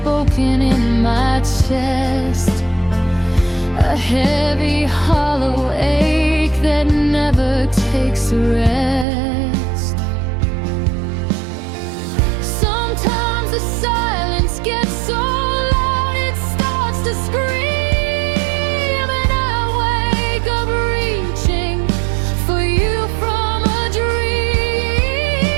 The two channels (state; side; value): drops out; left; at 9.1 s